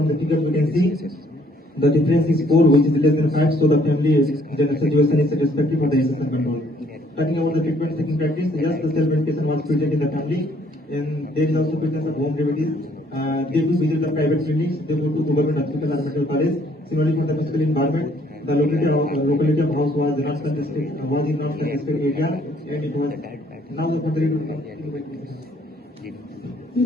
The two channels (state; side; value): normal; both; correlation 0.64